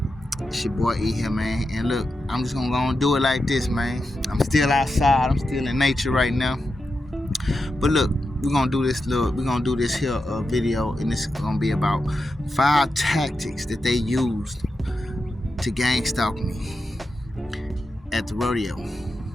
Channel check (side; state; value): both; normal; correlation 0.89